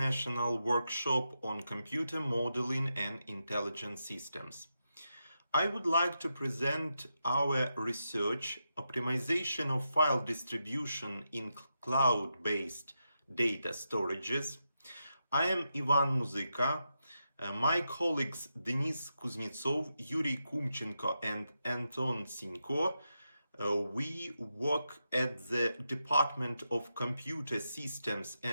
Workshop on Computer Modeling and Intelligent Systems. I would like to present our research, optimization of file distribution in cloud-based data storages. I am Ivan Muzyka. My colleagues Denis Kuznetsov, Yuri Kumchenko and Anton Sinko we work at the Department of Computer Systems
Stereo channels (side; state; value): both; inverted; correlation -0.86